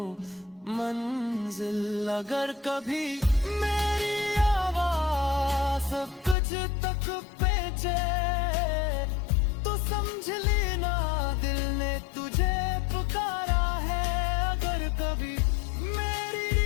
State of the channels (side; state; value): right; drops out; at 6.4 s